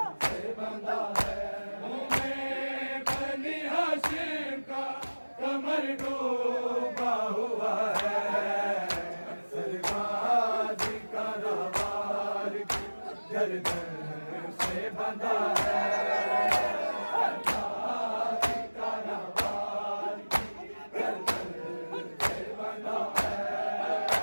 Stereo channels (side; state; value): both; inverted; correlation -1.00